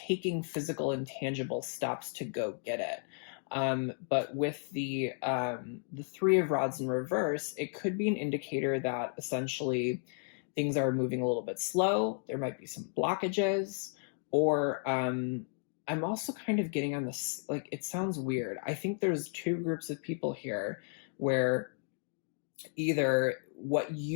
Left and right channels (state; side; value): silent; right; 55 dB below the other